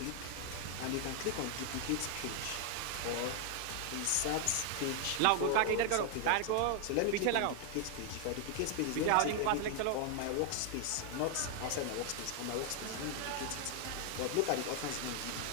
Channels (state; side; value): different; both; correlation 0.00